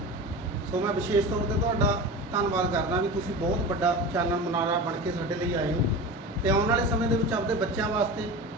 ਸੋ ਮੈਂ ਵਿਸ਼ੇਸ਼ ਤੌਰ ਤੇ ਤੁਹਾਡਾ ਧੰਨਵਾਦ ਕਰਦਾ ਵੀ ਤੁਸੀਂ ਬਹੁਤ ਵੱਡਾ ਚਾਨਣ ਮੁਨਾਰਾ ਬਣ ਕੇ ਸਾਡੇ ਲਈ ਆਏ ਹੋ, ਤੇ ਆਉਣ ਵਾਲੇ ਸਮੇਂ ਦੇ ਵਿੱਚ ਆਪਣੇ ਬੱਚਿਆਂ ਵਾਸਤੇ,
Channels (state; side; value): normal; both; correlation 0.30